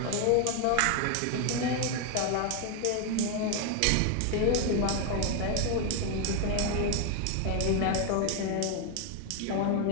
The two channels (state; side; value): different; both; correlation 0.01